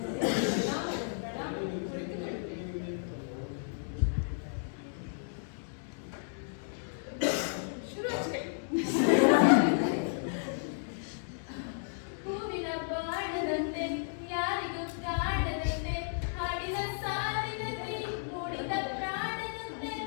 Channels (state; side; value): silent; right; digital silence